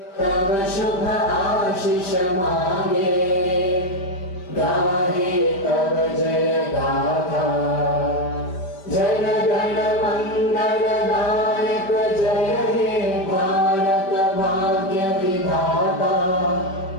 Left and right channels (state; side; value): late; right; 5.2 ms